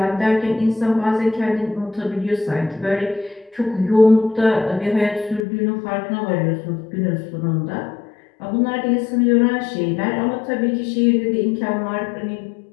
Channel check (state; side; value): drops out; right; at 5.4 s